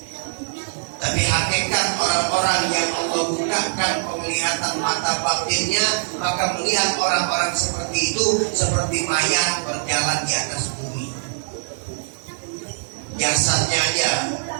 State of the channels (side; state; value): left; silent; 64 dB below the other